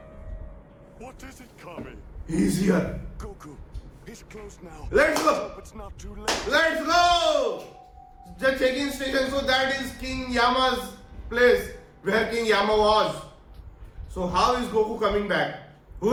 What is it, Kami? He's here. Goku, he's close now. Let's go. Hope it's not too late. Let's go. The check-in station. So that is King Yama's place where King Yama was. So how is Goku coming back? Who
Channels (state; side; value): identical; both; correlation 1.00